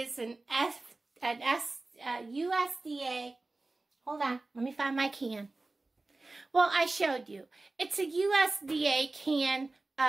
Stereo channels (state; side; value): quieter; left; 3.2 dB